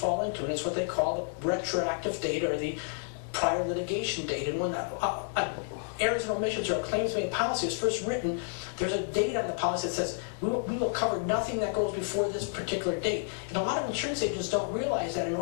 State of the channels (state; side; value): silent; right; 58 dB below the other